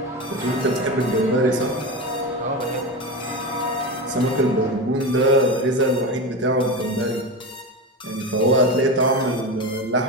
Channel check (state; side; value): normal; both; correlation 0.21